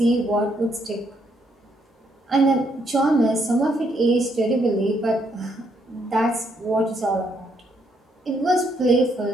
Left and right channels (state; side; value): normal; both; correlation 0.73